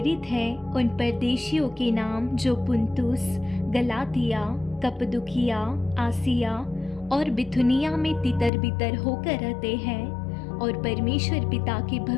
है, उन परदेशियों के नाम जो पुन्तुस, गलातिया, कप्पदुकिया, आसिया और बिथुनिया में तितर बितर होकर रहते हैं और परमेश्वर पिता के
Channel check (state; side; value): drops out; right; at 8.5 s